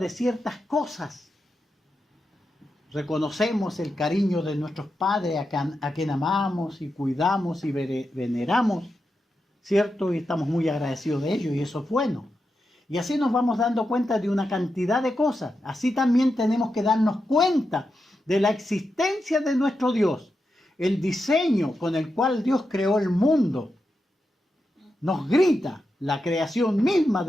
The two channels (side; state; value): both; normal; correlation 0.88